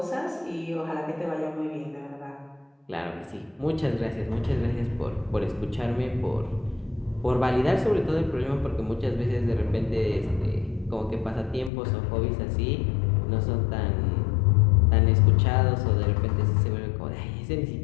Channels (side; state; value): right; drops out; at 11.7 s